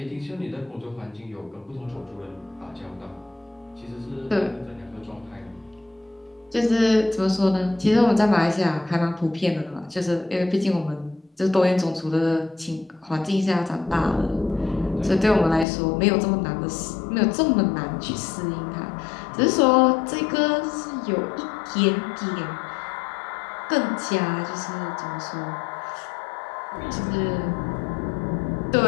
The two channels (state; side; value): drops out; right; at 15.7 s